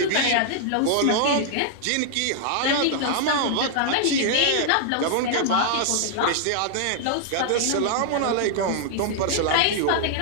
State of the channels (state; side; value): different; both; correlation -0.01